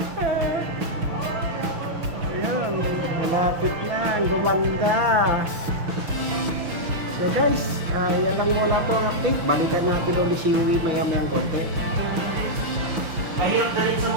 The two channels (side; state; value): left; late; 6.2 ms